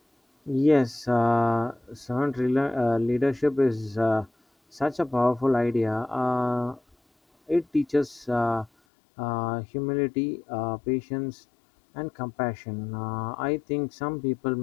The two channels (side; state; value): right; drops out; at 8.7 s